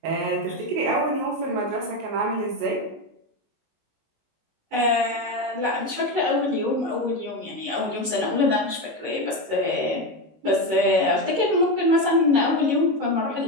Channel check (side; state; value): left; late; 19 ms